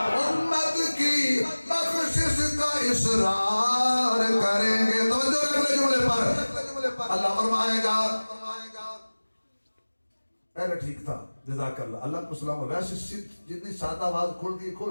امت کی بخشش کا اصرار کریں گے۔ توجہ اگلے جملے پر اللہ فرمائے گا، پہلے ٹھیک تھا جزاک اللہ، اللہ کو سلام۔ ویسے جتنی سادہ آواز کھول دی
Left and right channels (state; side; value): inverted; both; correlation -1.00